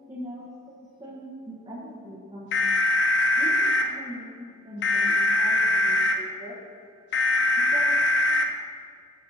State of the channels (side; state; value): both; normal; correlation 0.61